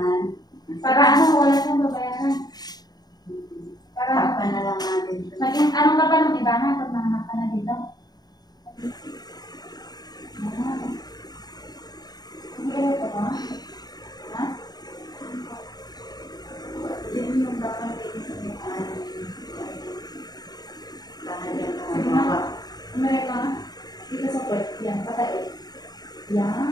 Para ano, wala siyang babayaran. Para Takpan na lang natin. maging anong ka pa ng iba na pag nanganak ka na dito? Hindi ka ito ba? Ha? Yan yung dapat iisipin. Lalagyan ka ng mga. Umirik ka na? Dito sa puwet. Yan, patay.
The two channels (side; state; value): right; late; 0.19 ms